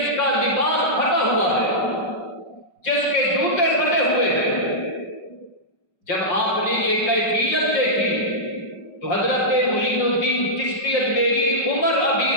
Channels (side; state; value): right; late; 5.2 ms